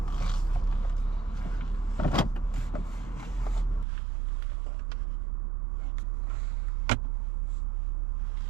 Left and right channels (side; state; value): left; drops out; at 3.9 s